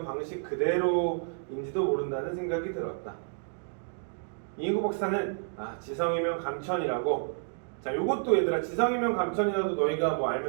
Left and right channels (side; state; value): left; silent; digital silence